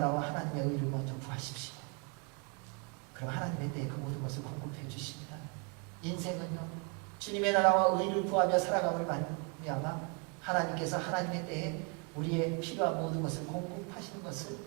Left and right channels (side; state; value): left; quieter; 35.2 dB